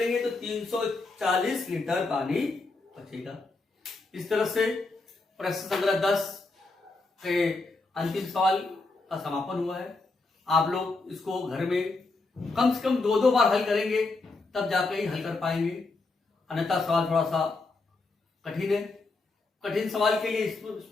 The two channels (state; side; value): quieter; right; 3.5 dB